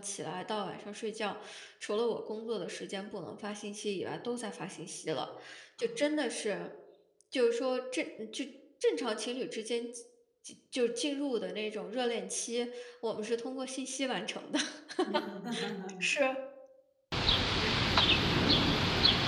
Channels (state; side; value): identical; both; correlation 1.00